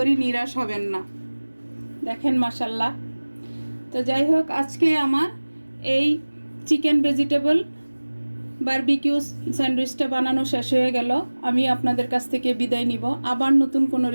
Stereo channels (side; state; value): both; inverted; correlation -1.00